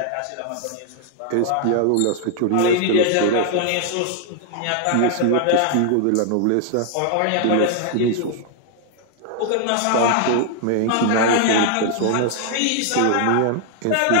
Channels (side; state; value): both; different; correlation 0.00